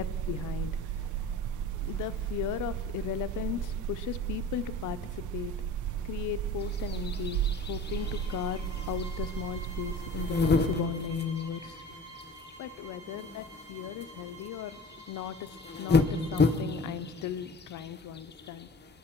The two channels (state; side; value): normal; both; correlation 0.40